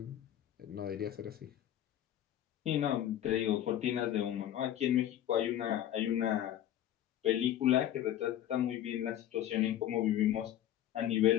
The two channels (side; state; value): right; quieter; 11.8 dB